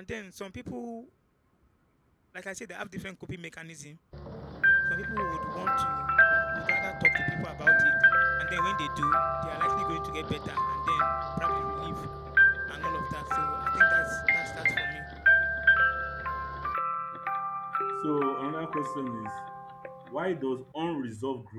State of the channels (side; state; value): both; identical; correlation 1.00